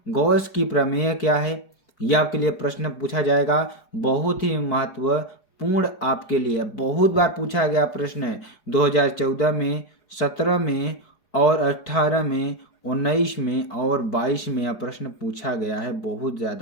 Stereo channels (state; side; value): late; right; 4.8 ms